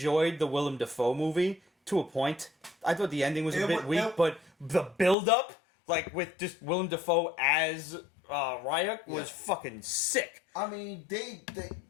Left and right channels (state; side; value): drops out; right; at 5.2 s